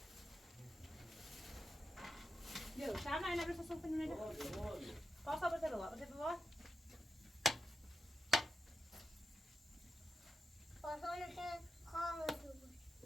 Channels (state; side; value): normal; both; correlation 0.88